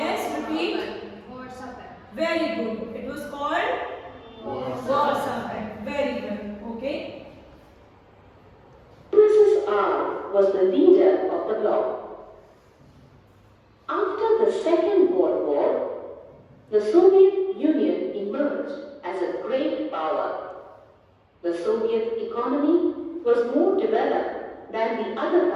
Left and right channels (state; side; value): identical; both; correlation 1.00